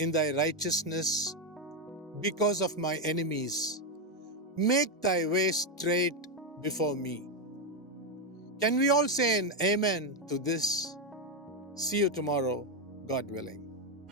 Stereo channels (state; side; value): normal; both; correlation 0.05